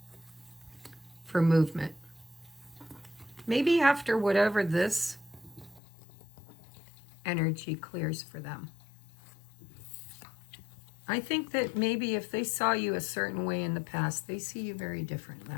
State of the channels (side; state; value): right; drops out; at 5.8 s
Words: for movement. Maybe after whatever this energy clears for them. I think that maybe if they saw you a certain way in the past, they see you very different